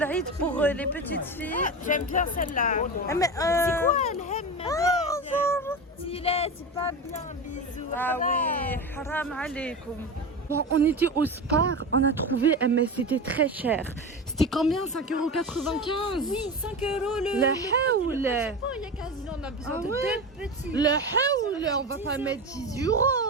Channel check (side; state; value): both; normal; correlation 0.24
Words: pour les petites filles. J'aime bien celle-là. Ah, mais, C'est quoi elle aime c'est pas bien, bisous. Ah oui, haram alaikum. Bon, on était au Spar, on a trouvé, mais c'était très cher. C'était combien? 5,95 €? Oui, 5 euros le. La haoul! Il y a 15 ans, on a besoin Ah de ouais? deux petits. Le haoul! On va pas mettre 10 €.